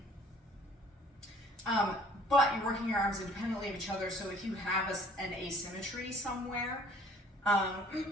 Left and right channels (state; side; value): normal; both; correlation 0.55